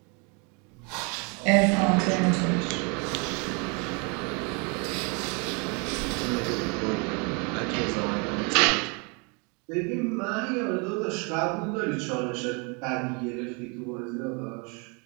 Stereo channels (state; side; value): quieter; left; 32.8 dB